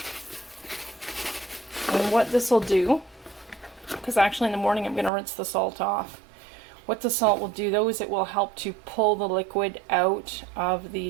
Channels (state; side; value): drops out; left; at 5.1 s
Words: And what this will do, because actually in the morning I'm going to rinse the salt off. What the salt will do though is it will help to pull the liquid out of